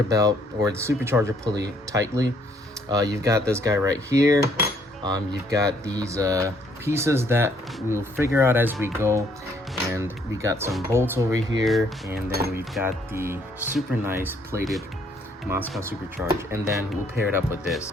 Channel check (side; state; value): both; normal; correlation 0.66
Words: belt or the supercharger pulley tightly. You've got this guy right here. You've got these pieces that we'll figure out as we go, and we got some bolts over here, and then we've got the super nice plated Moscow Supercharge, and then we'll pair it up with this.